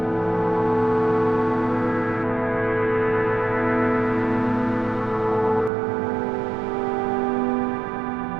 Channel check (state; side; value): drops out; left; at 5.7 s